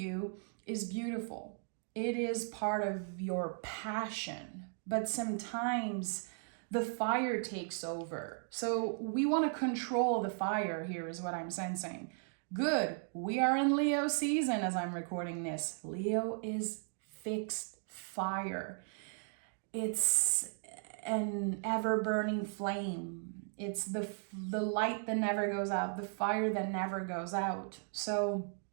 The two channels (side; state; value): left; silent; 53 dB below the other